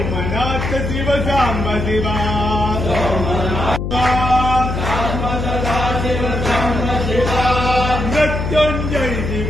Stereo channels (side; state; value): left; noise; hum, 3 dB below the sound